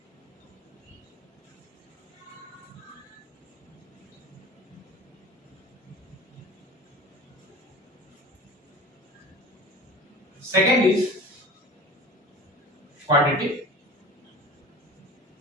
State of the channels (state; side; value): normal; both; correlation 0.37